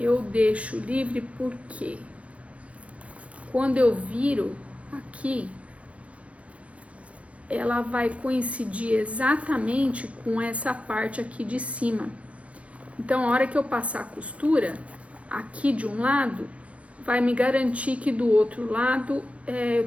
deixo livre porque quando eu viro aqui, ela vai coincidir exatamente com essa parte aqui de cima. Então, a hora que eu passar a costura, aqui de um lado, vai me garantir que do outro lado,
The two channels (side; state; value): left; late; 0.064 ms